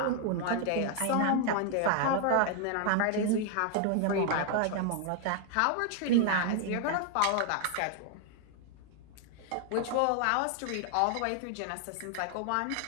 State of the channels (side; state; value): both; different; correlation 0.00